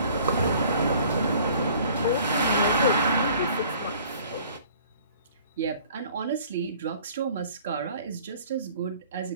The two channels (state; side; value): inverted; both; correlation -0.53